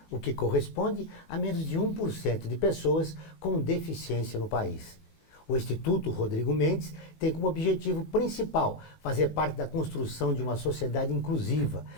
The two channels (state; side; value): late; right; 19 ms